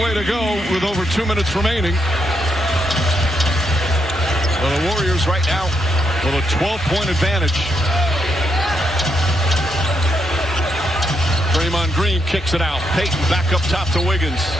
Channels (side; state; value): both; normal; correlation 0.79